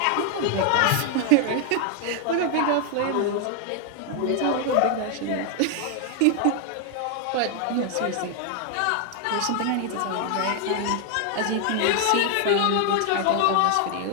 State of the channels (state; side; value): different; both; correlation 0.00